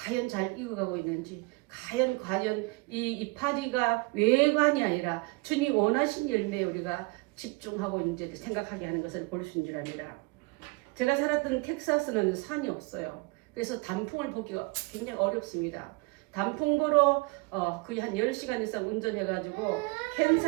잘 익어가고 있는지, 과연 이 이파리가 외관이 아니라 주님 원하신 열매에 우리가 집중하고 있는지를 생각하게 하는 것을 볼 수 있는 줄 압니다. 제가 살았던 텍사스는 산이 없어요. 그래서 단풍을 보기가 굉장히 어렵습니다. 단풍 보러 거의 한 10시간 이상 운전해가지고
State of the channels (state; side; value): quieter; left; 26.4 dB